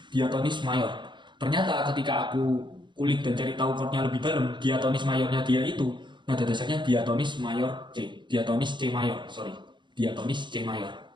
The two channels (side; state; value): left; late; 0.23 ms